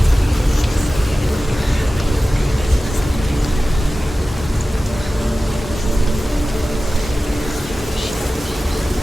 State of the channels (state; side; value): normal; both; correlation 0.95